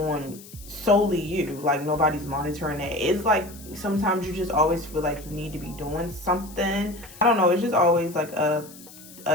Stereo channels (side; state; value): left; noise; hiss, 19 dB below the sound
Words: solely you. Like, nobody's monitoring that. It's like sometimes you just always feel like you need to be doing something. I don't know. It's just always like a